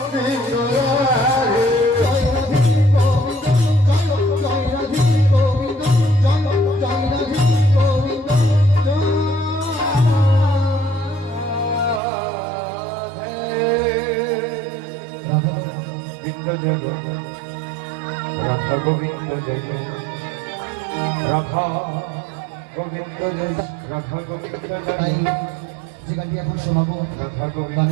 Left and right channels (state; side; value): drops out; left; at 12.0 s